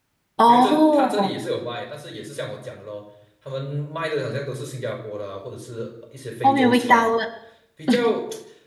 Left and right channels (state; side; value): identical; both; correlation 1.00